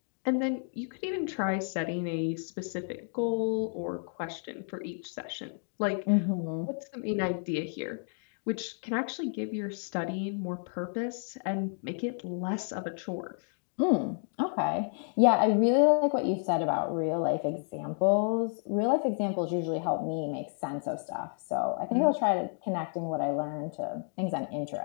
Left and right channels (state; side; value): silent; right; 57 dB below the other